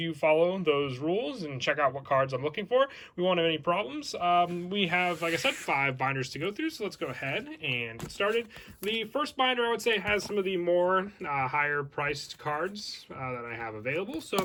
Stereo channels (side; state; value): both; identical; correlation 1.00